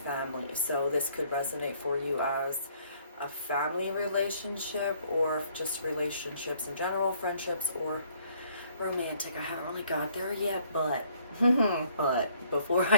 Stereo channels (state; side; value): inverted; both; correlation -0.63